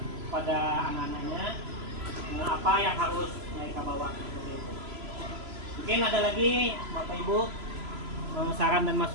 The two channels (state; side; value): late; left; 3.0 ms